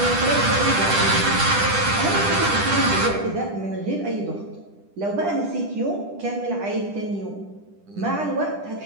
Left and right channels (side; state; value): left; late; 10 ms